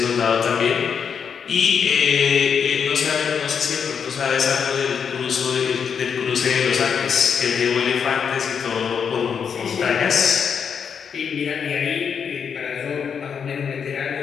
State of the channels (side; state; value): right; quieter; 6.9 dB